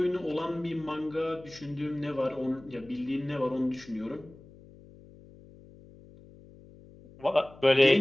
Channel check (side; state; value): left; noise; hum, 22 dB below the sound